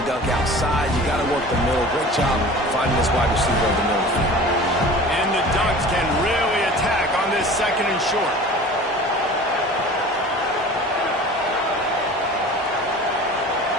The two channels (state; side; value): normal; both; correlation 0.40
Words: dunk outside. You got to work the middle. Great job finding this wide receiver in the middle of the field. And the Ducks can really attack on this second and short.